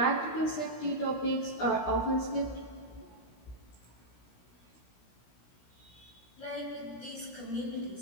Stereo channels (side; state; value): right; late; 17 ms